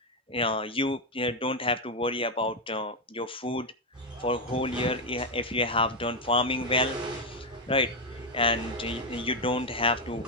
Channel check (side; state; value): both; normal; correlation 0.05